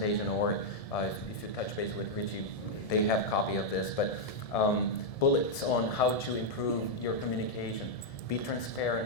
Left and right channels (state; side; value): late; right; 1.7 ms